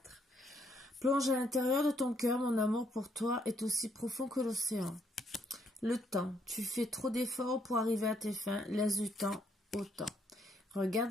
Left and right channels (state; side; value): normal; both; correlation 0.72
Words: Plonge à l'intérieur de ton cœur, mon amour pour toi est aussi profond que l'océan. Le temps, tu fais trop d'efforts pour arriver à tes fins, laisse du temps au temps. Regarde